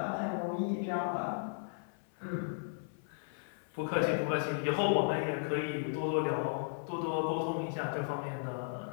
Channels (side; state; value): right; silent; 54 dB below the other